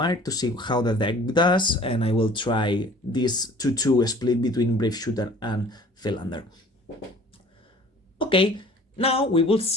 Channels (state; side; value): normal; both; correlation 0.50